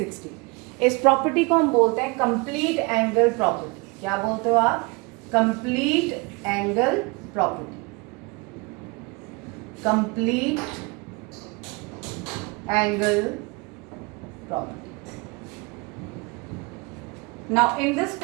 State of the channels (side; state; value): left; quieter; 28.2 dB